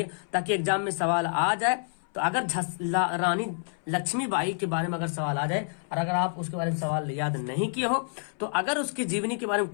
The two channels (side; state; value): right; silent; 59 dB below the other